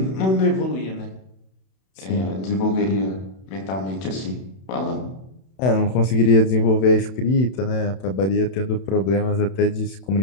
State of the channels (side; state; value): right; late; 31 ms